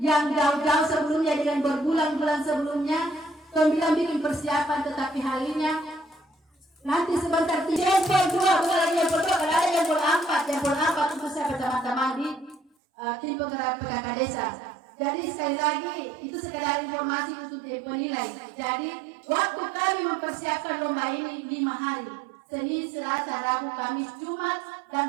yang jauh-jauh sebelumnya, dengan berbulan-bulan sebelumnya kami bikin persiapan, tetapi halinya nanti sebentar jempol 2, bukan lagi jempol 2, kalau ada jempol 4 untuk saya teman-teman di tim penggerak PKK desa. Jadi sekali lagi itu sekedar informasi untuk penilai. Jadi waktu kami mempersiapkan lomba ini 5 hari, Senin, Selasa, Rabu, Kamis, Jumat,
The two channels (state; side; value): drops out; left; at 12.7 s